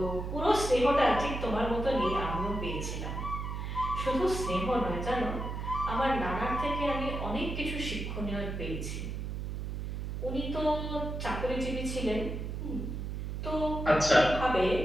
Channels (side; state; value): right; noise; hum, 4 dB below the sound